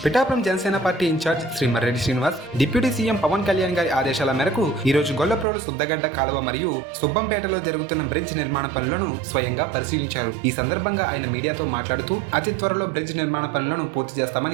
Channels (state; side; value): drops out; left; at 5.5 s